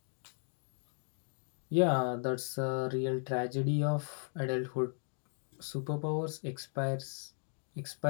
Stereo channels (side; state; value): right; silent; 54 dB below the other